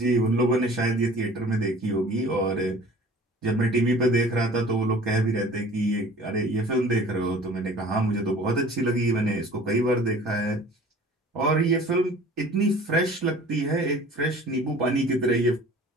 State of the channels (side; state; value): both; normal; correlation 0.46